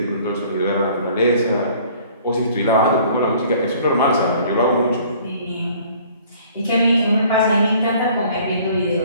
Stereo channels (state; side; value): inverted; both; correlation -0.54